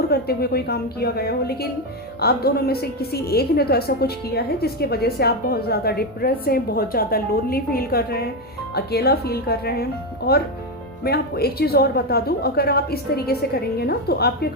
करते हुए कोई काम किया गया हो, लेकिन आप दोनों में से किसी एक ने तो ऐसा कुछ किया है जिसकी वजह से आप बहुत ज़्यादा डिप्रेस हैं, बहुत ज़्यादा लोनली फील कर रहे हैं, अकेला फील कर रहे हैं। और मैं आपको एक चीज़ और बता दूं, अगर आप इस तरीके से करेंगे ना तो आपके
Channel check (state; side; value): normal; both; correlation 0.10